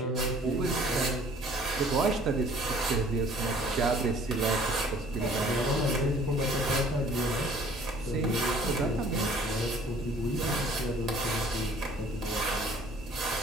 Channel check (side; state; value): both; normal; correlation 0.54